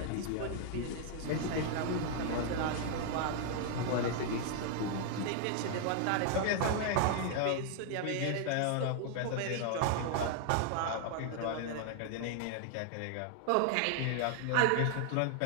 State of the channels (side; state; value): both; different; correlation 0.00